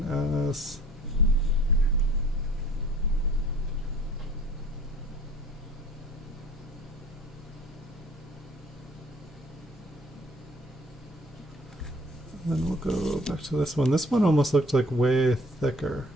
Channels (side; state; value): both; normal; correlation 0.53